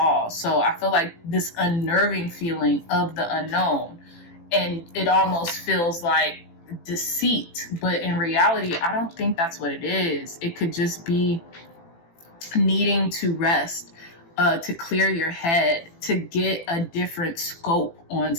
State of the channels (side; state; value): right; late; 18 ms